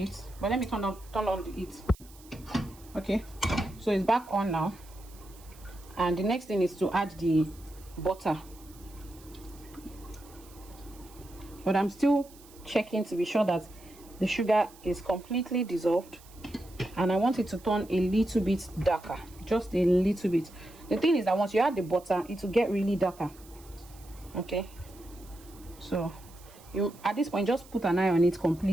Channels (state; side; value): noise; right; hiss, 23 dB below the sound